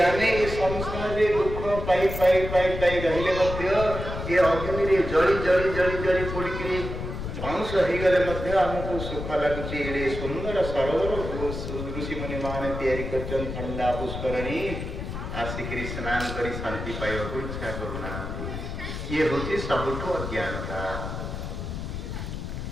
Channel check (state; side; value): noise; left; rumble, 6 dB below the sound